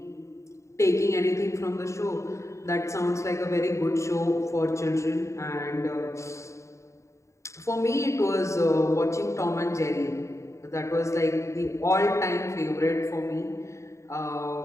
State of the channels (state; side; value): late; right; 0.14 ms